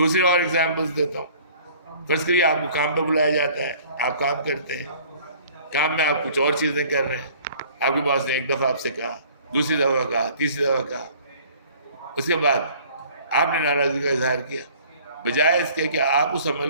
اور ایگزامپلس دیتا ہوں. فرض کریے آپ کو کام پہ بلایا جاتا ہے، آپ کام کرتے ہیں، کام میں آپ کچھ اور چیزیں کر رہے ہیں. آپ کے باس نے ایک دفعہ آپ سے کہا، دوسری دفعہ کہا، تیسری دفعہ کہا. اس کے بعد آپ نے ناراضگی کا اظہار کیا. بجائے اس کے کہ آپ اس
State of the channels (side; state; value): both; inverted; correlation -0.52